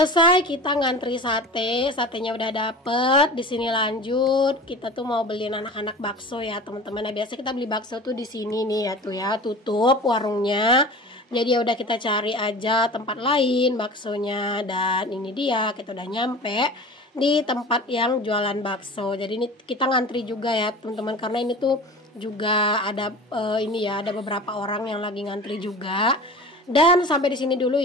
kita ngantri satenya udah dapet. Di sini lanjut kita tuh mau beliin anak-anak bakso ya teman-teman. Nah biasa kita beli bakso tuh di sini nih ya, tuh ya tutup warungnya. Jadi ya udah kita cari aja tempat lain baksonya. Dan ini dia, kita udah nyampe di tempat yang jualan bakso. Jadi ini kita ngantri juga ya teman-teman, karena ini tuh juga ada ini ya, ada beberapa orang yang lagi ngantri juga. Dan sampai di sini dulu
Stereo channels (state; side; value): normal; both; correlation 0.37